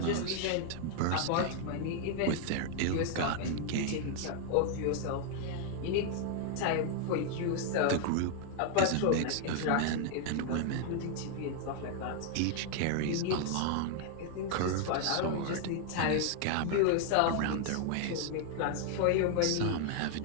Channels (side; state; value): both; different; correlation 0.00